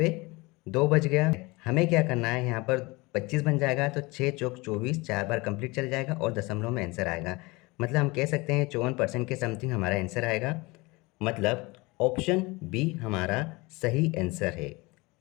2 बच गया। हमें क्या करना है, यहाँ पर 25 बन जाएगा तो 6 चौक 24 4 बार कंप्लीट चल जाएगा और दशमलव में आंसर आएगा। मतलब हम कह सकते हैं 54% के समथिंग हमारा आंसर आएगा। मतलब ऑप्शन बी हमारा सही आंसर है।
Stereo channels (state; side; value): quieter; right; 24.0 dB